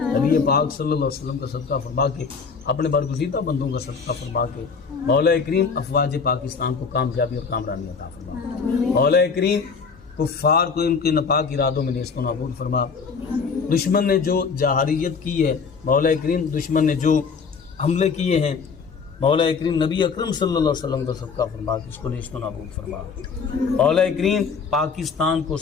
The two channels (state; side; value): quieter; right; 5.4 dB